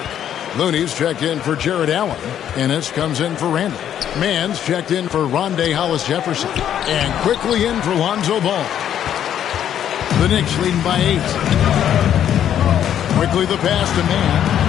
Looney's checked in for Jared Allen. Ennis comes in for Randall. Mann's checked in for Rondé Hollis-Jefferson. And quickly in for Lonzo Ball. The Knicks leading by 8. Quickly the pass to Mann.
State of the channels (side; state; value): right; quieter; 10.1 dB